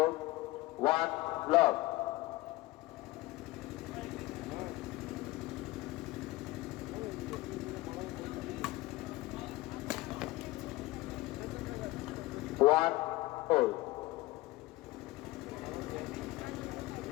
one love. One hold.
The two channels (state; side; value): quieter; right; 19.4 dB